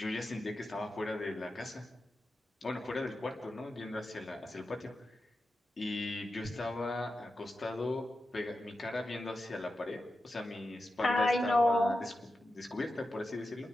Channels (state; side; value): normal; both; correlation 0.91